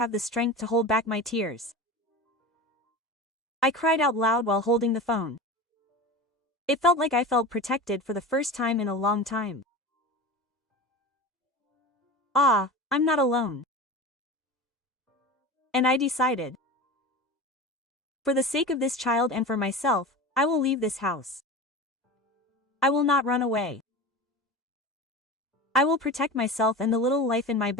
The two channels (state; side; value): normal; both; correlation 0.30